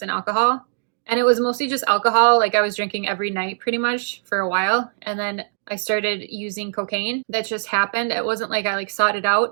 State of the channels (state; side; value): silent; left; digital silence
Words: and alcohol. And it was mostly just alcohol. Like I was drinking every night pretty much for a while. And then I started using cocaine. That just happened. It wasn't like I like sought it